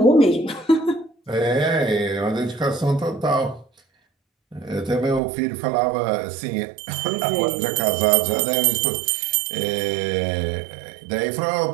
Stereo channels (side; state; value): left; drops out; at 5.2 s